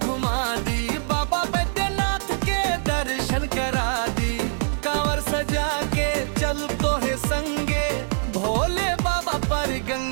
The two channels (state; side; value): silent; left; digital silence